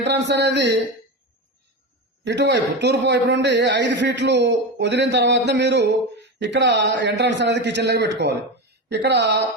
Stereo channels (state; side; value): normal; both; correlation 0.20